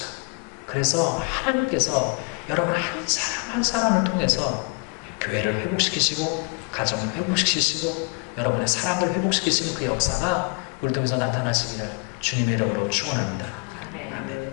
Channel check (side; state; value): right; quieter; 33.2 dB